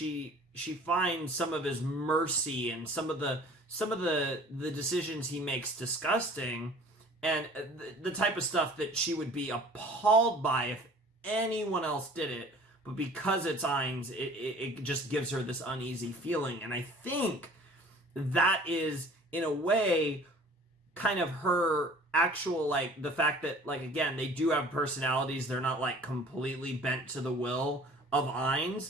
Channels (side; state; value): both; normal; correlation 0.48